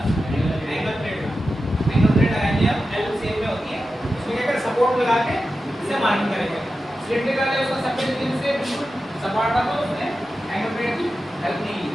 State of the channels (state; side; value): normal; both; correlation 0.92